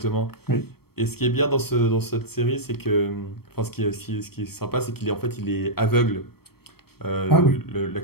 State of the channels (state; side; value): late; right; 0.95 ms